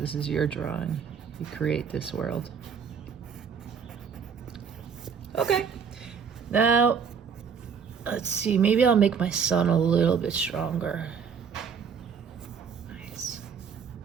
is your drawing. You create this world. Okay, now, let's see, maybe I'll make my sun a little bit stronger.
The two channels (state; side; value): quieter; left; 6.6 dB